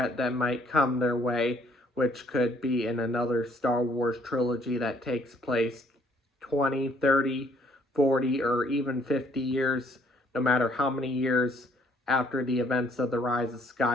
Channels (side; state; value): both; normal; correlation 0.64